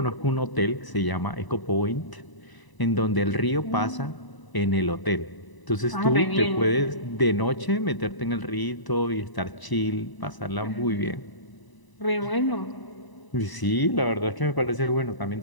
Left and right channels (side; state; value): right; late; 1.0 ms